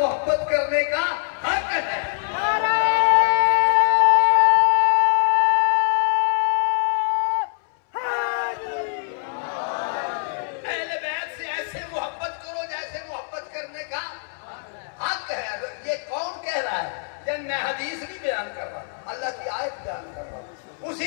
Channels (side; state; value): right; silent; 63 dB below the other